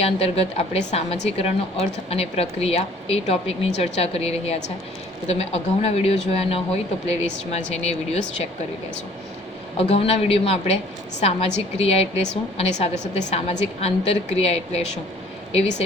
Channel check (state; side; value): normal; both; correlation 0.55